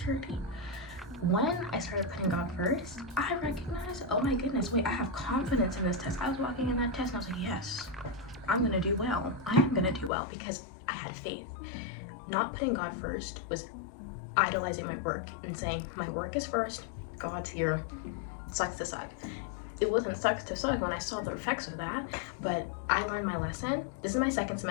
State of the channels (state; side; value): drops out; right; at 10.1 s